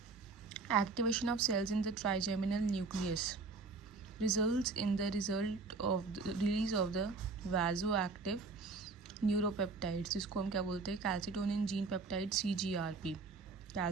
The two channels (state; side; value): quieter; left; 4.2 dB